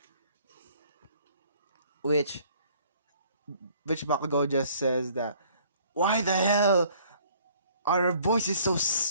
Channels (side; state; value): both; inverted; correlation -0.58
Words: Which Bakugo just says that, why the hell are our voices so